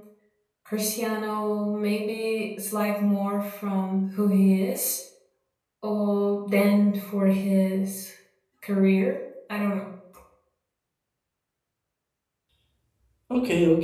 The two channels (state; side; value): identical; both; correlation 1.00